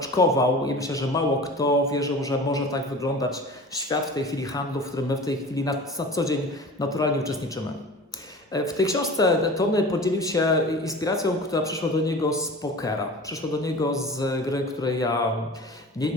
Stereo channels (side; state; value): both; normal; correlation 0.37